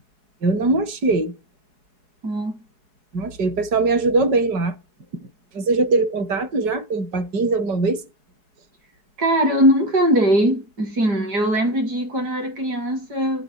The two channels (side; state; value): left; late; 4.7 ms